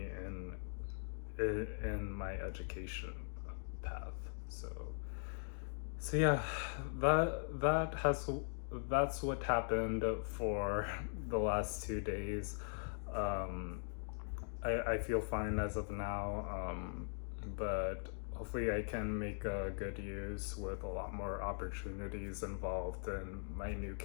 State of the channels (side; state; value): right; silent; digital silence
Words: in my education path. So yeah, that's what happened for the last 2 days. Um, I feel fine as of now, but hopefully I can make good use with a lot more opportunities involved in my new